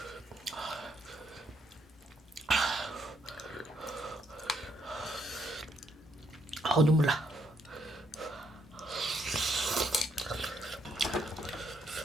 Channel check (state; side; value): normal; both; correlation 0.73